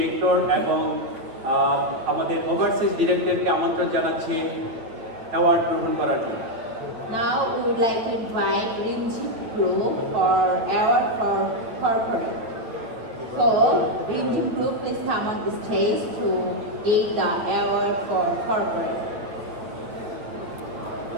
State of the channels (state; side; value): late; left; 9.0 ms